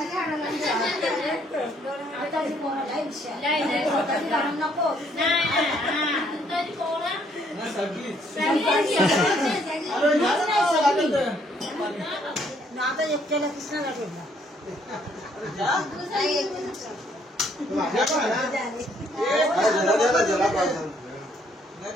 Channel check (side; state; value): both; normal; correlation 0.67